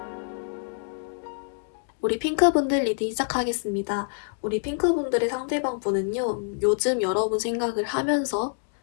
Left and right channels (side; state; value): right; silent; digital silence